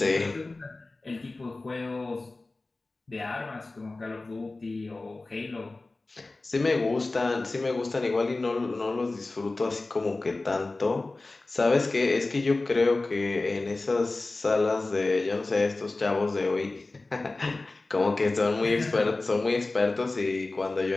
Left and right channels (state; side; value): quieter; right; 3.2 dB